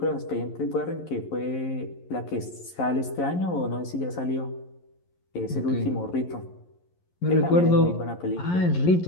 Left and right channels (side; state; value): right; late; 11 ms